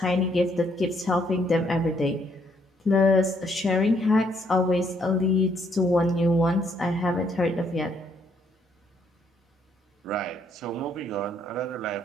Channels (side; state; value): both; normal; correlation 0.70